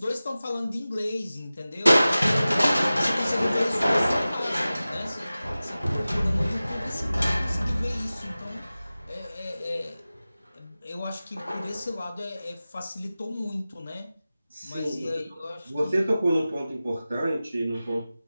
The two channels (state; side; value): inverted; both; correlation -0.96